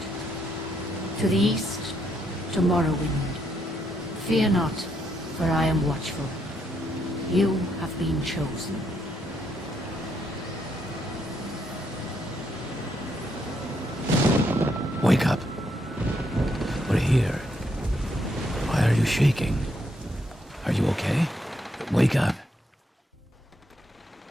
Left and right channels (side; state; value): both; normal; correlation 0.76